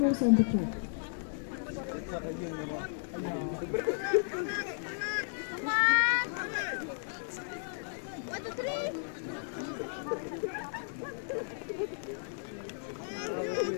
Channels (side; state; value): right; silent; digital silence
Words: on the track.